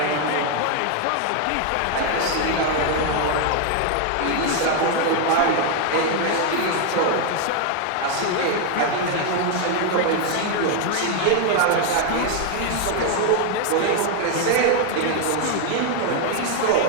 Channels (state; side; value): different; both; correlation 0.00